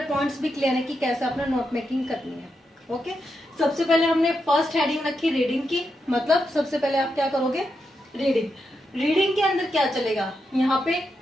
पॉइंट्स भी क्लियर है कि कैसे आपने नोट मेकिंग करनी है. ओके. सबसे पहले हमने फर्स्ट हेडिंग रखी रीडिंग की, मतलब सबसे पहले आप क्या करोगे, रीडिंग. रीडिंग के अंदर क्या चलेगा, यहाँ पे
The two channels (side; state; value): both; normal; correlation 0.85